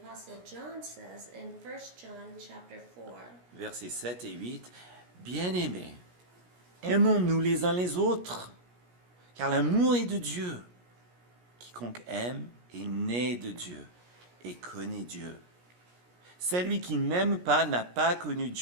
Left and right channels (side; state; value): left; late; 17 ms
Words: John, says in 1 John chapter 4. Versets 7 et 8. Bien-aimés, aimons-nous les uns les autres, car l'amour est de Dieu. Quiconque aime est né de Dieu et connaît Dieu. Celui qui n'aime pas n'a pas connu